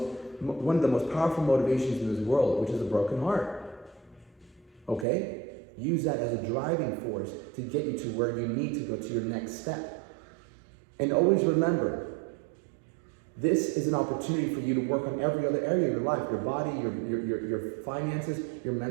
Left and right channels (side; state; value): left; drops out; at 5.1 s